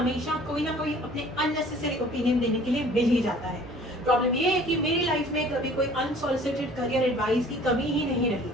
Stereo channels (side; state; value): both; normal; correlation 0.51